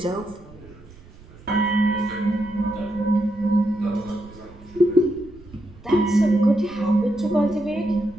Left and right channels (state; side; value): noise; right; rumble, 22 dB below the sound